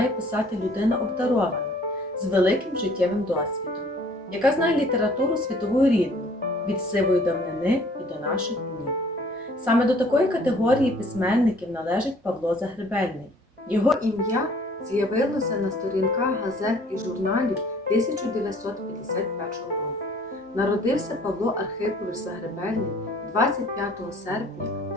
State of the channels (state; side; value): normal; both; correlation 0.55